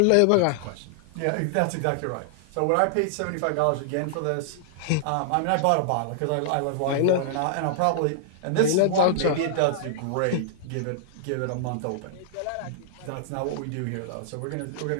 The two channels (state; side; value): different; both; correlation -0.01